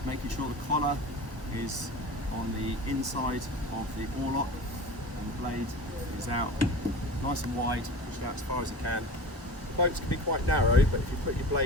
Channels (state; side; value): normal; both; correlation 0.34